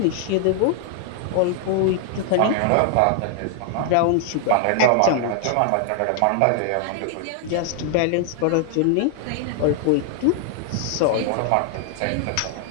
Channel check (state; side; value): different; both; correlation 0.00